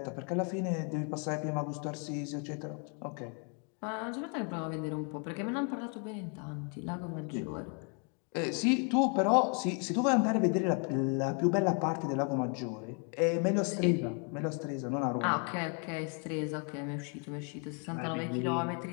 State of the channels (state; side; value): quieter; right; 38.9 dB